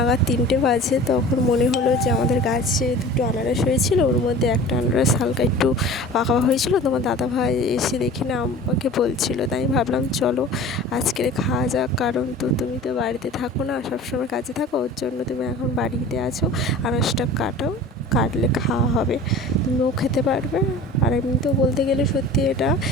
3টে বাজে, তখন মনে হলো যে আমাদের গাছে 2টো আনারস হয়েছিল, ওর মধ্যে একটা আনারস হালকা একটু পাকা হয়েছিল। তোমার দাদাভাই এসে দেখি না আমাকে বলছিল, তাই ভাবলাম চলো আজকে খাওয়া যাক। কারণ তুমি তো বাড়িতে থাকো না, সবসময় কাজে থাকো, ওর জন্য তুমি এখন বাড়িতে আছো। আনারসটা কাটলে খাওয়া হবে, তুমিও খেতে পারবে। আর এমনিতেও বলতে গেলে সত্যি এটা,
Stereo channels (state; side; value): normal; both; correlation 0.40